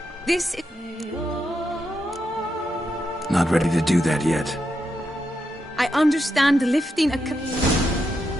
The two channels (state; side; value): normal; both; correlation 0.84